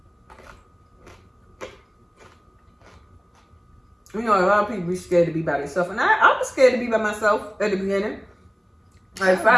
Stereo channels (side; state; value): both; identical; correlation 1.00